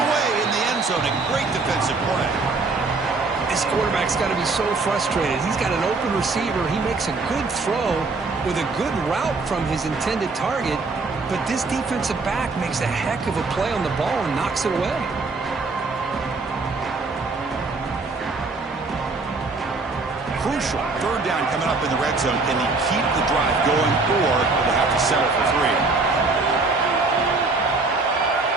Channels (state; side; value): quieter; left; 3.8 dB